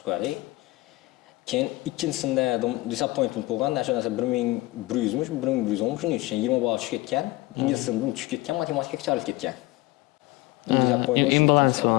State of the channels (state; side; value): quieter; right; 19.9 dB